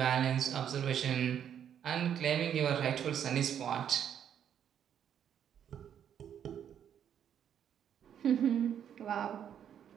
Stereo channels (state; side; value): quieter; left; 9.1 dB